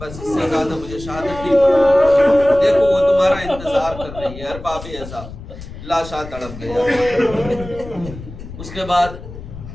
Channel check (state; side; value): noise; left; rumble, 13 dB below the sound